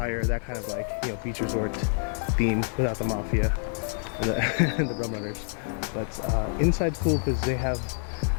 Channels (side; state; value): right; silent; 60 dB below the other